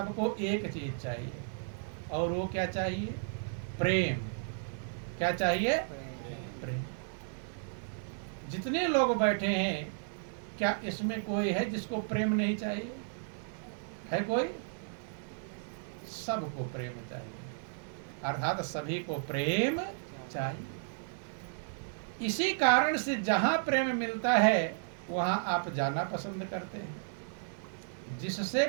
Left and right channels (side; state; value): left; silent; digital silence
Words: एक चीज चाहिए, और वो क्या चाहिए? प्रेम। क्या चाहिए? प्रेम। जितने लोग बैठे हैं, क्या इसमें कोई है जिसको प्रेम नहीं चाहिए? है कोई? सबको प्रेम चाहिए, अर्थात सभी को प्रेम चाहिए। इसी कारण से जहां प्रेम मिलता है वहां आप जाना पसंद करते हैं। जिससे